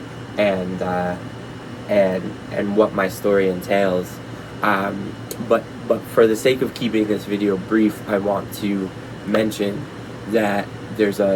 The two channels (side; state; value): both; identical; correlation 1.00